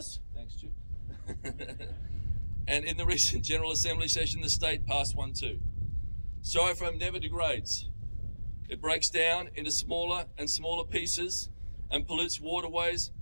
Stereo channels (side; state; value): both; inverted; correlation -1.00